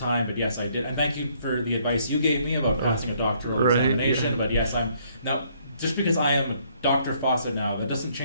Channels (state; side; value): inverted; both; correlation -0.67